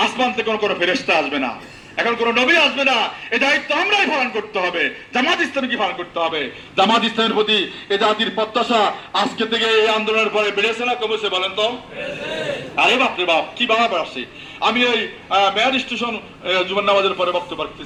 আসমান থেকে কোনো ফেরেশতা আসবে না, এখন কোন নবী আসবে না। এই দায়িত্ব আমরাই পালন করতে হবে, জামাত ইসলামীকে পালন করতে হবে। জামাত ইসলামের প্রতি এ জাতির প্রত্যাশা আজকে থেকে এই আন্দোলনের পরে বেড়েছে না কমেছে? বলেন তো। আরে বাপরে বাপ, কি বাবা আসে। আমি এই মেয়ার স্টেশন জুমার নামাজের পরে বক্তব্য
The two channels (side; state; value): both; identical; correlation 1.00